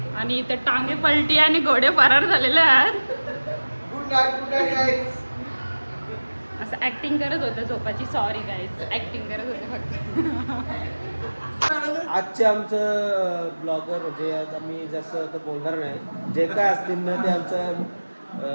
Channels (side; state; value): both; inverted; correlation -1.00